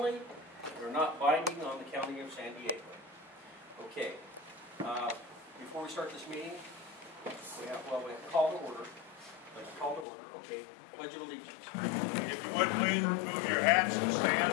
and are not binding on the County of San Diego. Okay, before we start this meeting, we have to call to order. Let's call to order. Okay, Pledge of Allegiance. If you would please remove your hats and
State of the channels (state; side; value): drops out; right; at 10.1 s